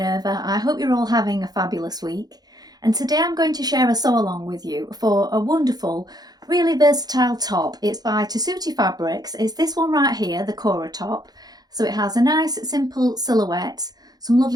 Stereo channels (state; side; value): late; left; 0.19 ms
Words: I hope you're all having a fabulous week. And today I'm going to share a sew along with you for a wonderful, really versatile top. It's by Tessuti fabrics. It's this one right here, the Cora top. So it has a nice simple silhouette, some